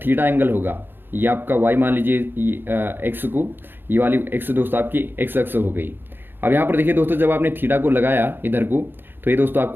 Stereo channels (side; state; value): left; late; 0.10 ms